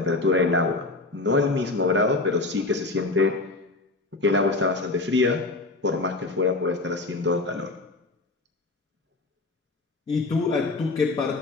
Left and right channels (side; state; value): right; quieter; 3.2 dB